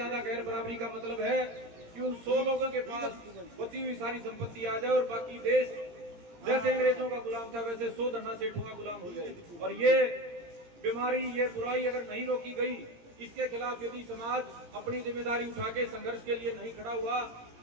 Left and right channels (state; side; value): late; left; 17 ms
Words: गैर बराबरी का मतलब है कि उन 100 लोगों के पास बची हुई सारी संपत्ति आ जाए और बाकी देश जैसे अंग्रेजों का गुलाम था वैसे 100 धन्ना सेठों का गुलाम हो जाए। और ये बीमारी, ये बुराई अगर नहीं रोकी गई, इसके खिलाफ यदि समाज अपनी जिम्मेदारी उठा के संघर्ष के लिए नहीं खड़ा हुआ,